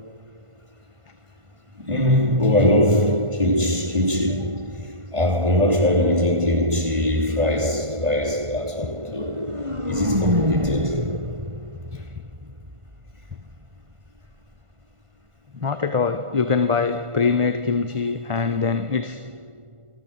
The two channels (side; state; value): left; late; 1.5 ms